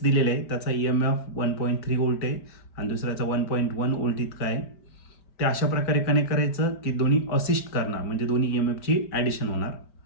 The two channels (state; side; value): late; right; 5.2 ms